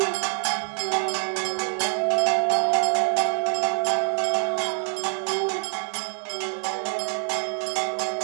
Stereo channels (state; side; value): silent; left; digital silence